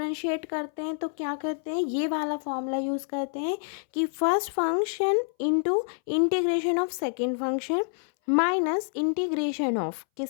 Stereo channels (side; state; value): right; silent; 60 dB below the other